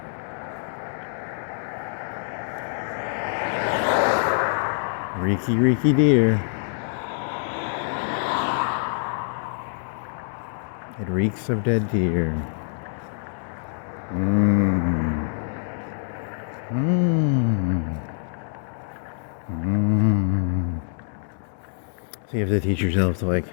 Reeky deer. It reeks of dead deer. Mmm. Mmm. Mmm. So you have to teach yourself to like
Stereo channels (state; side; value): silent; right; digital silence